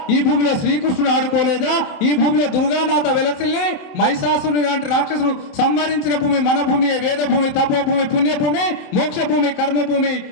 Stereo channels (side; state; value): right; late; 27 ms